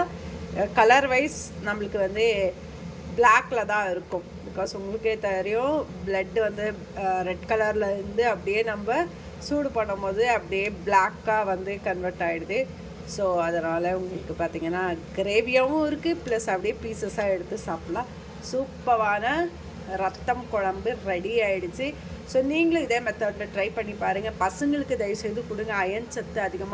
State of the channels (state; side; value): identical; both; correlation 1.00